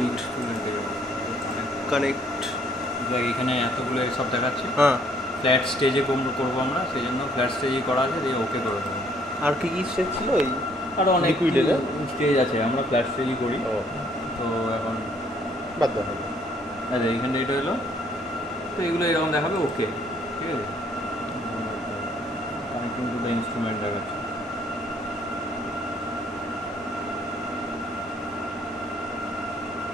connect এখানে এতগুলো সব দেখাচ্ছে। হ্যাঁ, ফ্ল্যাট স্টেজে করবো আমরা, সেই জন্য ফ্ল্যাট স্টেজেই করা আছে, দিয়ে ওকে করে দেবো। আর কি কি স্টেজ ছিল? এই আরও অনেক স্টেজ আছে, আমরা ফ্ল্যাট স্টেজই করি। তো এখন বাদ দাও। আচ্ছা, এইখানটা এটা হলো, তো এগুলো এরকম দেখাবে ওকে, ঠিক আছে। কানেক্টিং টু দ্য ইনস্ট্রুমেন্ট দেখাচ্ছে।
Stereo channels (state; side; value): normal; both; correlation 0.64